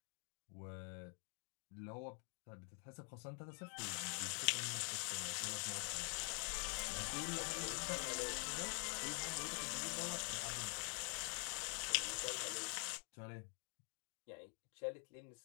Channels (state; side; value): quieter; right; 36.1 dB